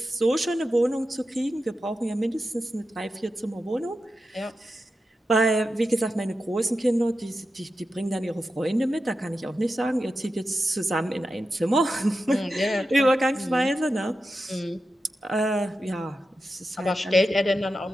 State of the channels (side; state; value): both; normal; correlation 0.90